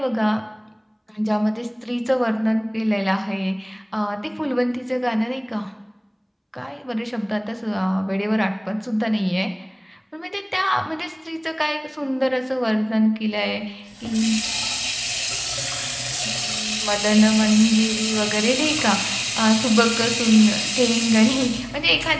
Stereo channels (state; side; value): identical; both; correlation 1.00